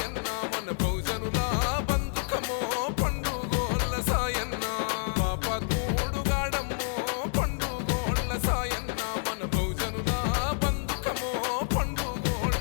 మన బహుజనుల బంధుకమో పండుగోళ్ళ సాయన్న పాపాత్ముడు గాడమ్మో పండుగోళ్ళ సాయన్న మన బహుజనుల బంధుకమో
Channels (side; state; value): right; silent; digital silence